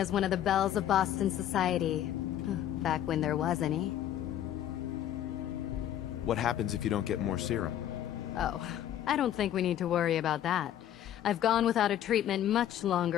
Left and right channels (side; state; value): right; quieter; 11.3 dB